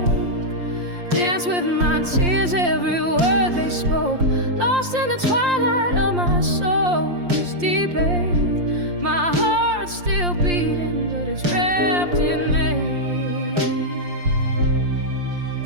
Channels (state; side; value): late; left; 5.7 ms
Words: dance with my tears, every word they spoke, lost in the twilight of my soul's deep ache. My heart's still beating, but it's wrapped in ache.